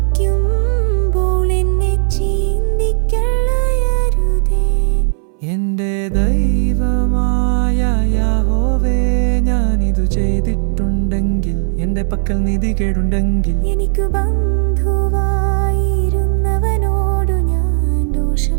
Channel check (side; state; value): left; silent; 65 dB below the other